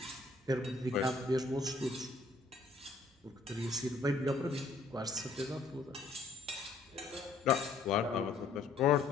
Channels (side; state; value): right; quieter; 3.7 dB